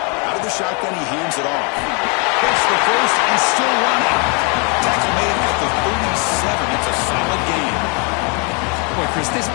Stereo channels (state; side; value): quieter; right; 34.6 dB